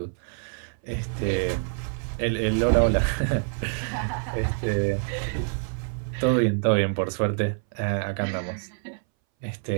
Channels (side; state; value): left; silent; 61 dB below the other